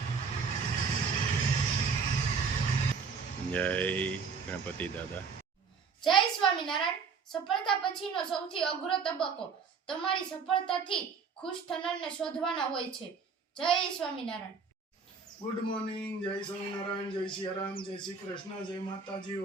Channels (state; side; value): quieter; left; 5.5 dB